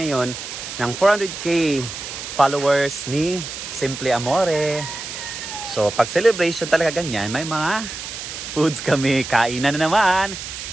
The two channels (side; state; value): right; noise; hiss, 9 dB below the sound